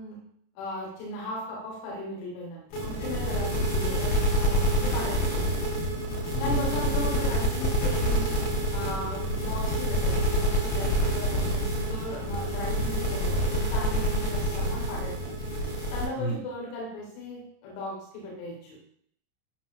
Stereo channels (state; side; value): late; right; 31 ms